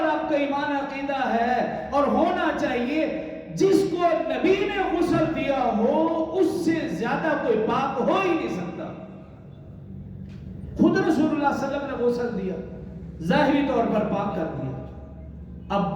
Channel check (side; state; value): both; identical; correlation 1.00